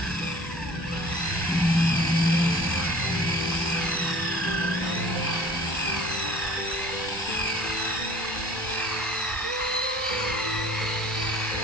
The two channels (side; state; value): both; normal; correlation 0.46